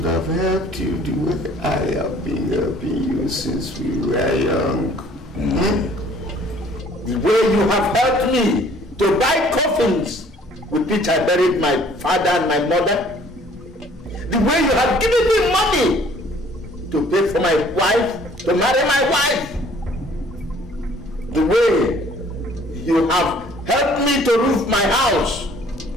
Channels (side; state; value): both; normal; correlation 0.56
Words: have helped you the way I have been helping you since we were young. The way you have helped me to buy coffins with which I buried my father and my mother. The way you have given me money to pay for my wife, to marry my wife. The way you have helped me to roof my house.